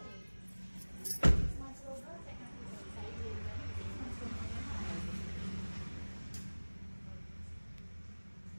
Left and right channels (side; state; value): both; inverted; correlation -1.00